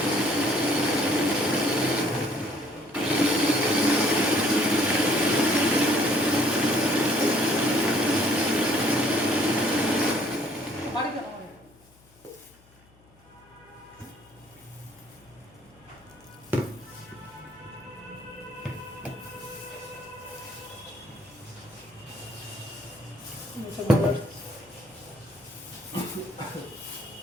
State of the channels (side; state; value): left; noise; hum, 29 dB below the sound